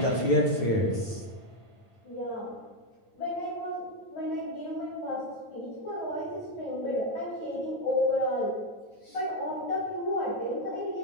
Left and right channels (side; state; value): right; late; 9.1 ms